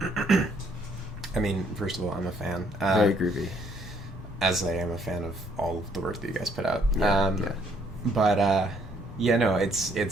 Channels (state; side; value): normal; both; correlation 0.67